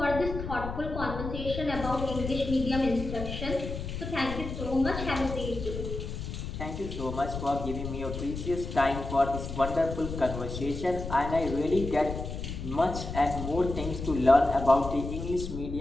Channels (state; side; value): noise; left; rumble, 7 dB below the sound